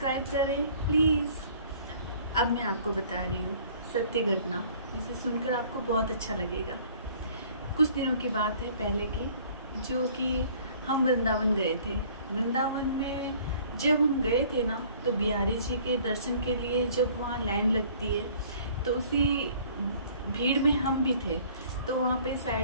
करें प्लीज़। अब मैं आपको बता रही हूँ सत्य घटना, जिसे सुनकर आपको बहुत अच्छा लगेगा। कुछ दिनों की बात है पहले की, जो कि हम वृंदावन गए थे। वृंदावन में जब हम गए थे ना, तो बिहारी जी के दर्शन के लिए जब वहाँ लाइन लगती है, तो उसी भीड़ में हम भी थे। तो वहाँ पे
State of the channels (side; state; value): both; inverted; correlation -0.54